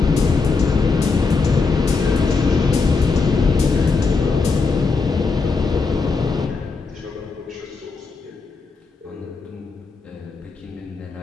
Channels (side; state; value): right; quieter; 4.4 dB